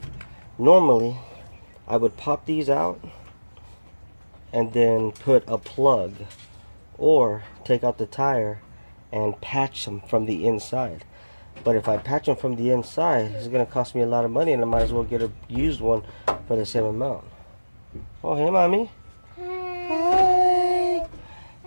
normally I would pop these out and then put a plug or take out the tire and patch them from the inside. But if I patch them from the inside, it's going to cost me a lot of money, and I might as well get a used one for the same amount. Oh, hey, mommy. Hi.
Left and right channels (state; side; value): inverted; both; correlation -1.00